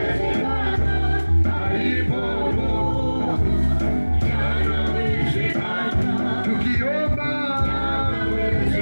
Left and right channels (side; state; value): both; inverted; correlation -1.00